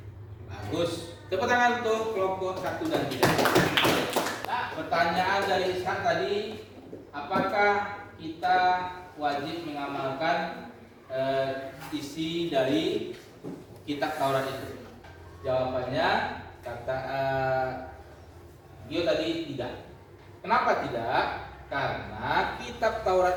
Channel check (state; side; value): identical; both; correlation 1.00